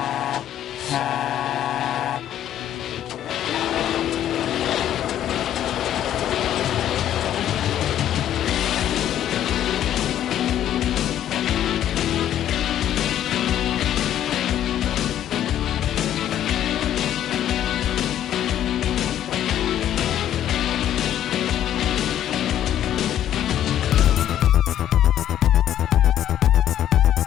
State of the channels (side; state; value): right; quieter; 11.2 dB